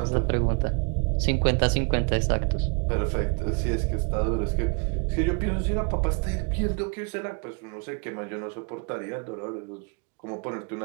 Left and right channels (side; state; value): left; quieter; 34.9 dB